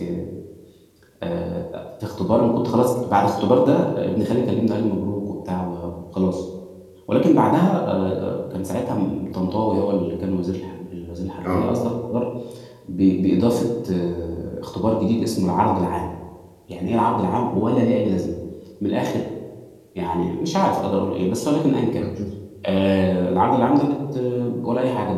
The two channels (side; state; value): both; identical; correlation 1.00